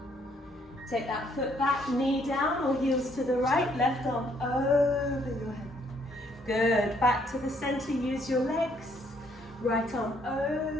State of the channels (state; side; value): normal; both; correlation 0.68